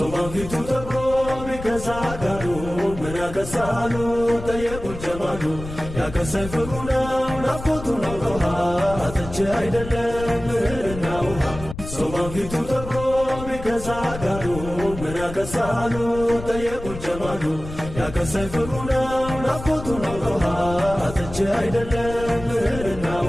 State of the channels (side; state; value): left; noise; rumble, 11 dB below the sound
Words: ፊቱ ተብሮ ቢከሳጋሉ ምን ያከሳሉ ጠየቁት ጀማሉ ያከሳይ ፍቅሩ ነው ናፍቆቱ ነው ውሃ አጥቼ አይደለም እህልና ውሃ ሶማን ፊቱ ተብሮ ቢከሳጋሉ ምን ያከሳሉ ጠየቁት ጀማሉ ያከሳይ ፍቅሩ ነው ናፍቆቱ ነው ውሃ አጥቼ አይደለም እህልና